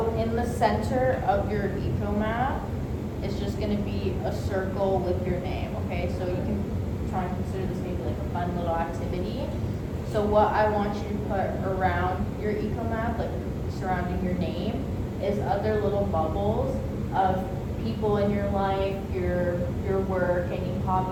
in the center of your eco map is just gonna be a circle with your name, okay? So you can try and consider this maybe like a fun little activity. So what I want you to put around your eco map, like surrounding your name, is other little bubbles of people in your life, your work, any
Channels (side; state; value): both; identical; correlation 1.00